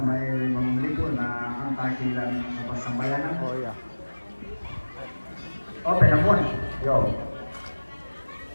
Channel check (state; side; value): inverted; both; correlation -1.00